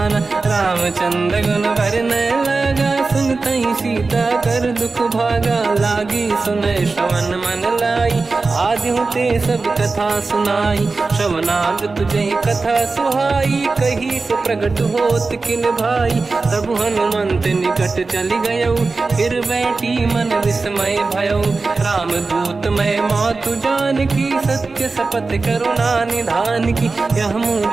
रामचंद्र गुण वर्णय लगा। सुनतहि सीता कर दुख भागा, लागी सुनय श्रवण मन लाई। आदि ते सब कथा सुनाई, श्रवनाद तुझे कथा सुहाई। कही से प्रगट होत किन भाई, तब हनुमंत निकट चली गयो। फिर बैठी मन विस्मय भयो, राम दूत मैं मातु जानकी। सत्य शपथ करुणा निधान की। यह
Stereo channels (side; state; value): left; quieter; 3.9 dB